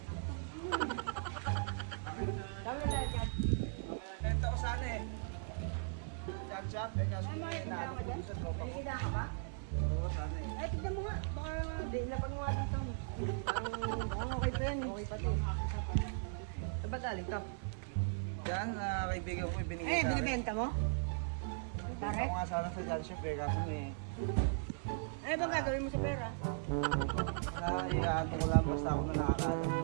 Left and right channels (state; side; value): silent; left; 52 dB below the other